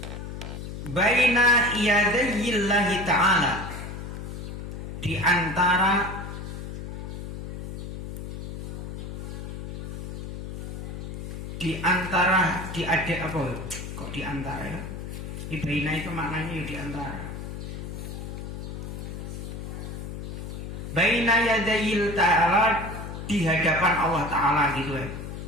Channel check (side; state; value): left; noise; hum, 7 dB below the sound